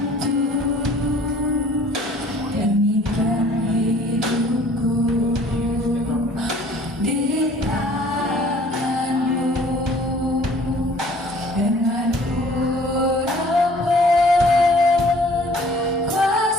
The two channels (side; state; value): both; normal; correlation 0.53